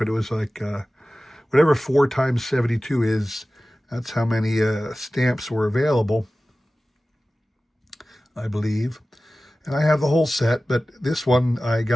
it was like, whatever 4 times 72 is, that's how many stamps were available, I believe. And I have the whole set, but this one I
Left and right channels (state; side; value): normal; both; correlation 0.96